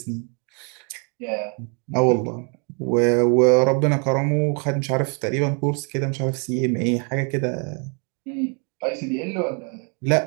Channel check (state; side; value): quieter; left; 37.2 dB